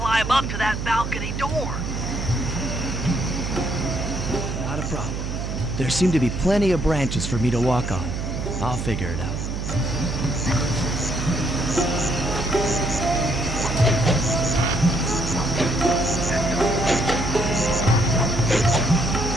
up to that balcony door. Not a problem. There seem to be plenty of branches for me to walk on. I'll figure it out.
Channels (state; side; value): noise; right; hum, 4 dB below the sound